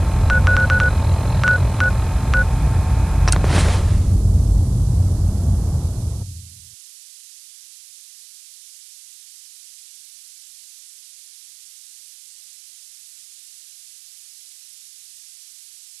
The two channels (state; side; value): noise; right; hiss, 23 dB below the sound